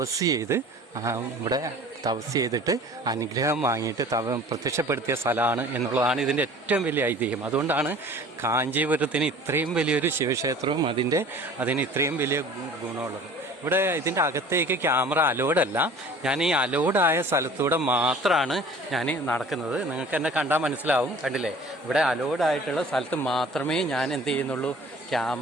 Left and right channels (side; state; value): both; normal; correlation 0.46